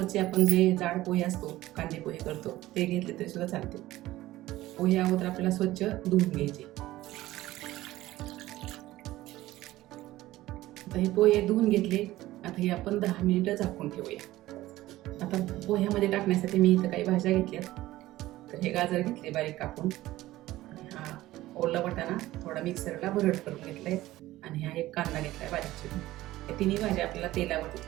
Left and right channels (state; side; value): quieter; left; 16.4 dB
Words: आपण जे जाड पोहे असतो, कांदे पोहे करतो, ते घेतले तरी सुद्धा चालते. पोहे अगोदर आपल्याला स्वच्छ धुवून घ्यायचे. आता हे पोहे धुवून घेतले. आता हे आपण 10 मिनिटं झाकून ठेवूया. आता पोह्यामध्ये टाकण्यासाठी मी इथं काही भाज्या घेतल्यात. तर हे गाजर घेतले बारीक कापून, आणि हा ओला वाटाणा थोडा मिक्सरला भरड करून घेतलाय, आणि हा एक कांदा घेतलाय बारीक चिरून. या तिन्ही भाज्या आपल्याला तेलावरती